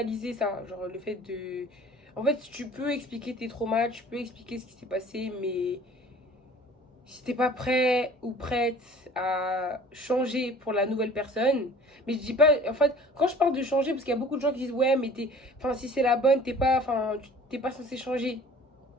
ça. Genre, le fait de. En fait, tu peux expliquer tes traumas, tu peux expliquer ce qui s'est passé, mais si t'es pas prêt ou prête à changer pour la nouvelle personne, mais je dis pas, en fait, quand je parle de changer, parce qu'il y a beaucoup de gens qui disent, ouais, mais enfin, si c'est la bonne, t'es pas censé changer.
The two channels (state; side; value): normal; both; correlation 0.48